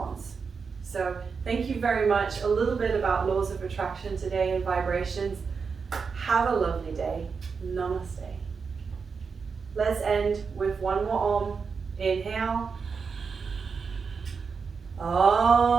So thank you very much. A little bit about laws of attraction today and vibrations. Have a lovely day. Namaste. Let's end with one more Om. Inhale.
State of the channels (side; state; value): left; quieter; 5.4 dB